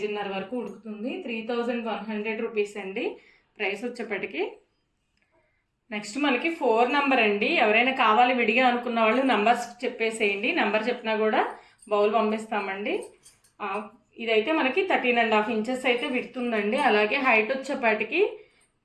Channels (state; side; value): identical; both; correlation 1.00